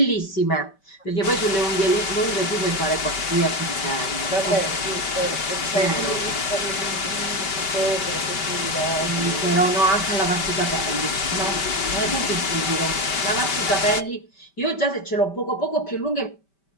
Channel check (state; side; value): late; right; 5.1 ms